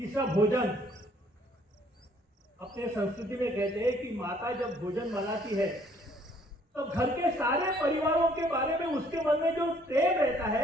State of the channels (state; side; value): normal; both; correlation 0.62